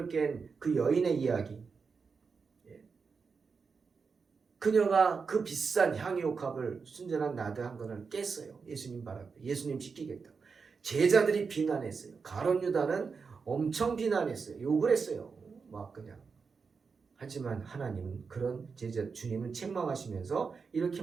깬 그 여인의 이야기. 그녀가 그 비싼 향유 옥합을 순전한 나드 한 건을 깼어요. 예수님 발 앞에. 예수님 지키겠다고. 제자들이 비난했어요. 가룟 유다는 엄청 비난했어요. 욕을 했어요. 막 그냥. 하지만 하나님은 그런 주님은 책망하시면서 이렇게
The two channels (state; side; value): quieter; left; 5.2 dB